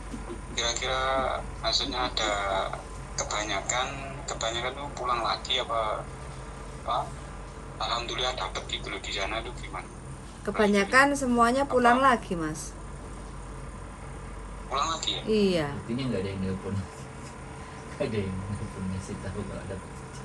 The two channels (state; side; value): identical; both; correlation 1.00